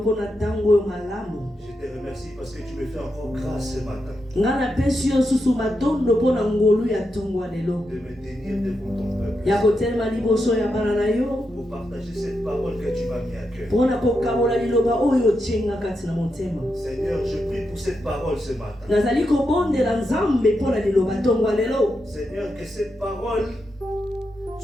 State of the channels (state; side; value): normal; both; correlation 0.85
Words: Je te remercie parce que tu me fais encore grâce ce matin de me tenir devant ton peuple pour partager cette parole que tu m'as mis à cœur. Seigneur, je prie pour cette parole ce matin. Seigneur, que cette parole